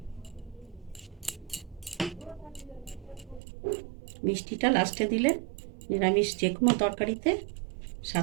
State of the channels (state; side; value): drops out; left; at 3.4 s